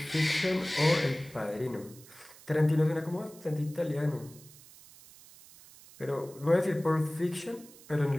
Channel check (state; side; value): noise; right; hiss, 21 dB below the sound